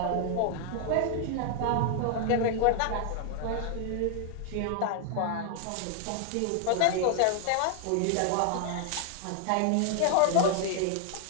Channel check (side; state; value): both; different; correlation 0.00